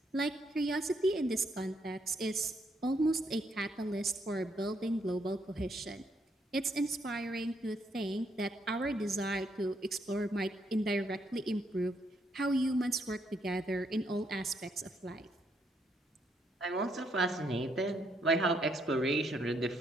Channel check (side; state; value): both; normal; correlation 0.74